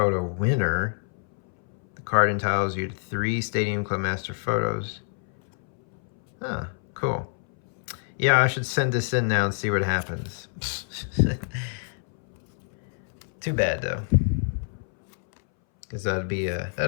winner. The card entitles you to 3 Stadium Club master photos. Huh, cool. Yeah, I should send this in now and see what happens. Too bad though, because that'd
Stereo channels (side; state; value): right; silent; 60 dB below the other